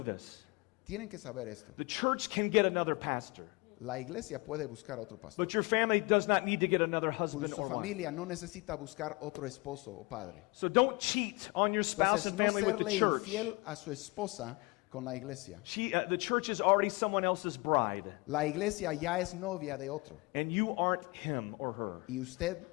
Tienen que saber esto. The church can get another pastor, La iglesia puede buscar otro pastor. but your family does not need to get another Pues husband su or wife. familia no necesita buscar otro esposo o padre. So don't cheat on your spouse Entonces, and no family with the serle church. infiel a su esposa con la iglesia. The church is already someone else's bride, La iglesia ya es novia de otro and you aren't him or her. y usted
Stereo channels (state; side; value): quieter; right; 26.2 dB